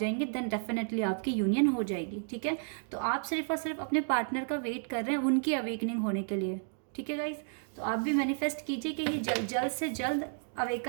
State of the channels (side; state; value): left; silent; digital silence